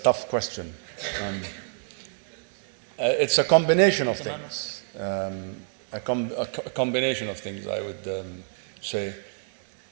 question. It's a combination of things. A combination of things, I would say.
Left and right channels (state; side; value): silent; left; digital silence